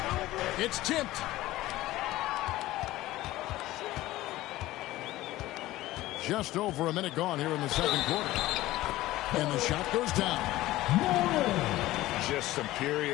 It's tipped. Just over a minute gone here in the second quarter. And the shot goes down. Just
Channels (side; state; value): right; quieter; 16.7 dB